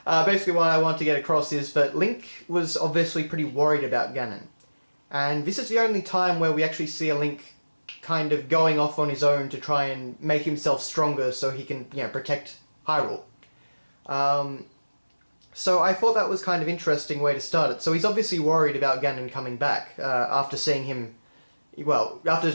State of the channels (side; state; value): both; inverted; correlation -1.00